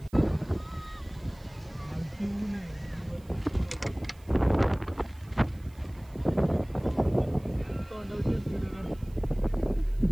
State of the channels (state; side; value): noise; right; hiss, 28 dB below the sound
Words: खालती ऊन आहे. तोंडावकेच व्हिडिओ करतो.